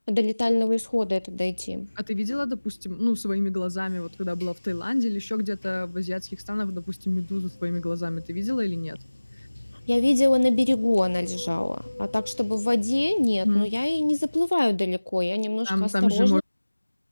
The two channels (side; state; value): both; inverted; correlation -1.00